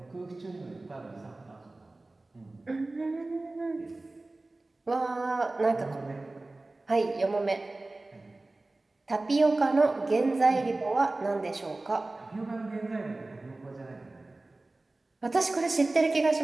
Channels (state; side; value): quieter; left; 3.0 dB